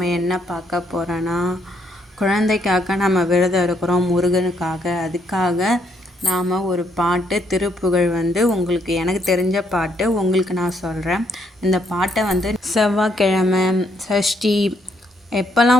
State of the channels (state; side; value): normal; both; correlation 0.72